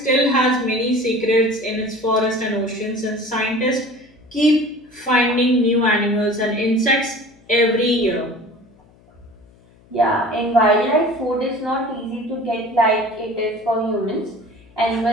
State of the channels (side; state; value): left; noise; hum, 29 dB below the sound